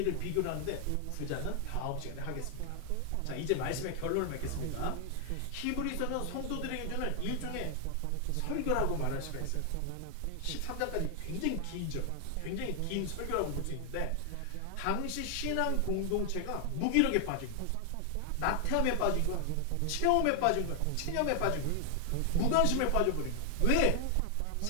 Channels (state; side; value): different; both; correlation 0.00